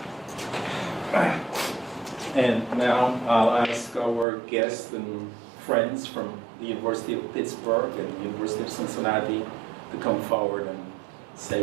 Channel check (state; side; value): drops out; left; at 4.2 s